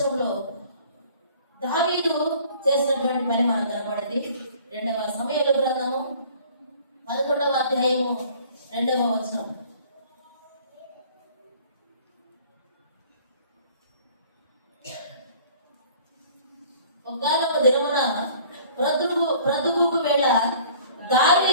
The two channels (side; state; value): both; inverted; correlation -0.51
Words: దావీదు చేసినటువంటి పని మనకు కనబడింది. 2వ సమూయేలు గ్రంథము 11వ అధ్యాయము 2వ వచనం. ఒకానొక దినమున ప్రొద్దుగూకు వేళ